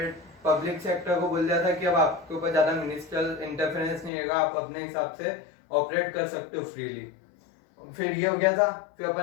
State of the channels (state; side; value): drops out; right; at 4.1 s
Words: पब्लिक सेक्टर को बोल दिया था कि अब आपके ऊपर ज्यादा मिनिस्ट्रियल इंटरफेरेंस नहीं रहेगा, आप अपने हिसाब से ऑपरेट कर सकते हो फ्रीली। फिर ये हो गया था। फिर